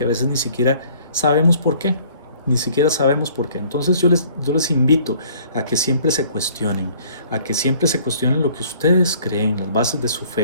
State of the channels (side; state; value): both; inverted; correlation -0.56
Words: a veces ni siquiera sabemos por qué. Ni siquiera sabemos por qué. Entonces yo les invito a que siempre se cuestionen, a que siempre se cuestionen lo que ustedes creen, las bases de su